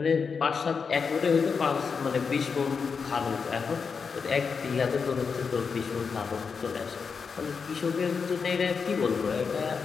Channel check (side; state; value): right; quieter; 5.6 dB